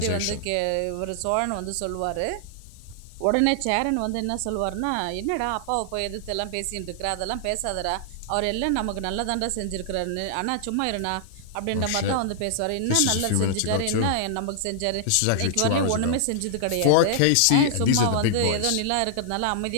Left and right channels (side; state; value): both; different; correlation -0.01